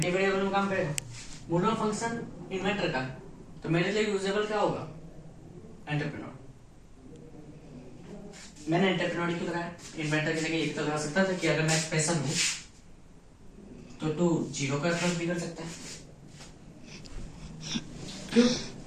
वेरिएबल में काम करेगा, मोडल फंक्शन इन्वेंटर का है, तो मेरे लिए यूजेबल क्या होगा, एंटरप्रेन्योर। मैंने एंटरप्रेन्योर क्यों लगाया, इन्वेंटर की जगह एक तो लगा सकता था कि अगर मैं एक्सप्रेशन हूं तो तू जीरो का अप्रोच भी कर सकता है। क्यों?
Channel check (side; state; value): both; identical; correlation 1.00